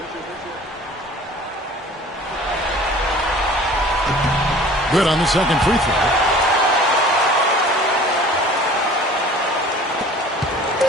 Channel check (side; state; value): both; normal; correlation 0.46